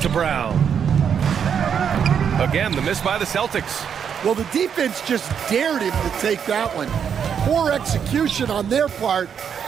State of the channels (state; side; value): quieter; left; 7.7 dB